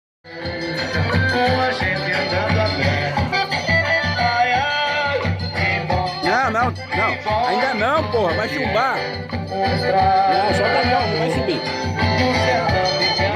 Com a gente andando a pé. Ai, ai, que bom. Não. Ainda não, porra. Vai chumbar. Mostrar Não, só tá não vai subir. no sertão de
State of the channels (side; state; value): both; identical; correlation 1.00